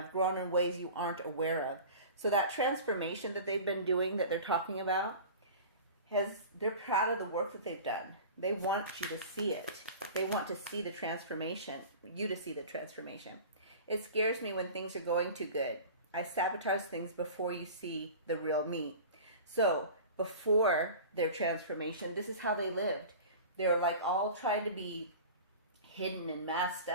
grown in ways you aren't aware of. So that transformation that they've been doing, that they're talking about, they're proud of the work that they've done. They want you to see it. They want to see the transformation, you to see the transformation. It scares me when things are going too good. I sabotage things before you see the real me. So before their transformation, this is how they lived. They were like all trying to be hidden and masked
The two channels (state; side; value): inverted; both; correlation -0.38